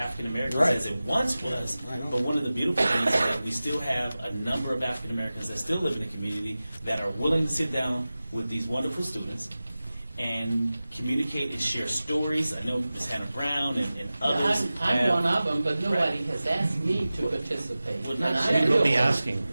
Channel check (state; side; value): inverted; both; correlation -0.96